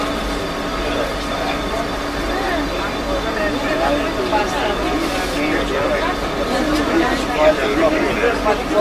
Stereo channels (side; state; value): both; identical; correlation 1.00